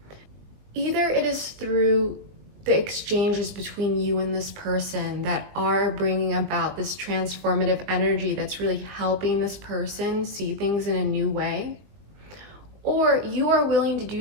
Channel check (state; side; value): late; left; 20 ms